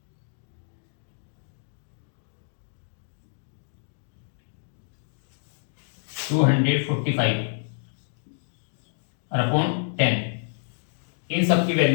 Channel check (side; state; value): right; silent; digital silence